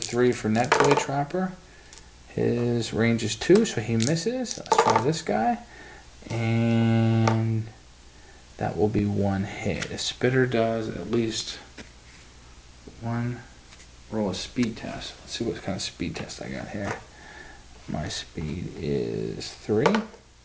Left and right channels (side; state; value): both; identical; correlation 1.00